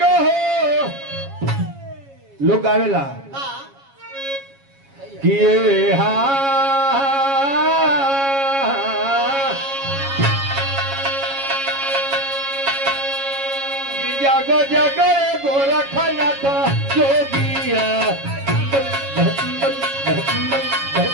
हो लोग गावेला कि हा जागो जागो गोरखनाथ जोगिया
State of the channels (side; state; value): left; late; 7.3 ms